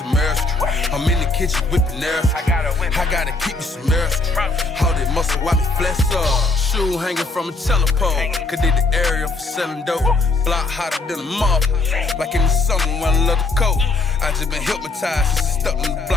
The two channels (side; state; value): right; quieter; 3.4 dB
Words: mercy. I'm in the kitchen whipping nerves. I gotta keep me some mercy. All that muscle while me flesh up. Shoe hanging from a telepole. Could did the area for selling dope. Block hotter than a moth. Like in the summer when I love the coat. I just been hypnotized since I stuck in the